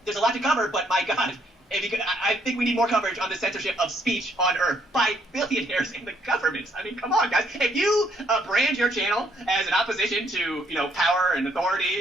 there's a lot to cover, but my God, if you could, I think we need more coverage on the censorship of speech on Earth by billionaires in the governments. I mean, come on, guys. If you brand your channel as an opposition to, you know, power and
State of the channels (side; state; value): both; normal; correlation 0.69